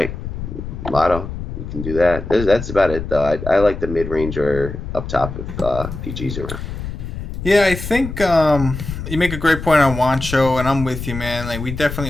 lotto, you can do that. That's about it, though. I like the mid range or up top if PG's around. Yeah, I think you make a great point on Wancho, and I'm with you, man. Like we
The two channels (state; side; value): noise; left; rumble, 7 dB below the sound